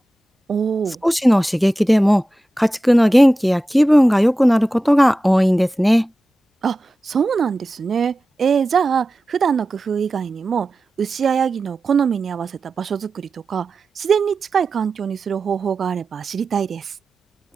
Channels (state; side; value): normal; both; correlation 0.94